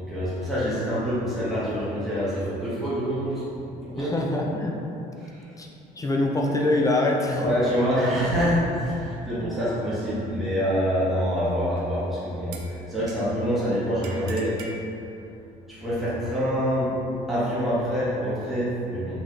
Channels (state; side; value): normal; both; correlation 0.57